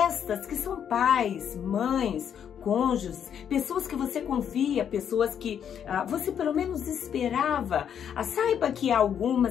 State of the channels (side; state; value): right; quieter; 8.6 dB